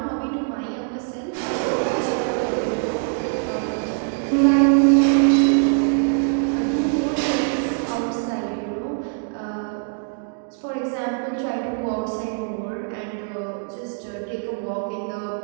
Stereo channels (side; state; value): left; silent; 61 dB below the other